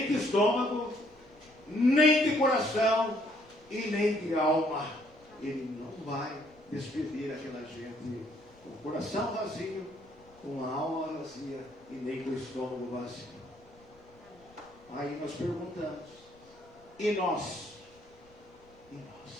de estômago, nem de coração e nem de alma. Ele não vai despedir aquela gente com o coração vazio, com a alma vazia e nem com o estômago vazio. Aí nós perguntamos, e nós? E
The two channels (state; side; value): noise; left; rumble, 28 dB below the sound